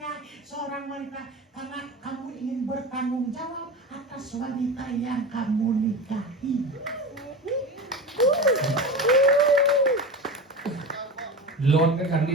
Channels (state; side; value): normal; both; correlation 0.27